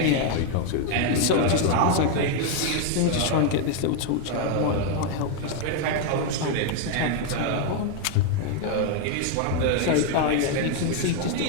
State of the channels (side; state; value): both; different; correlation 0.01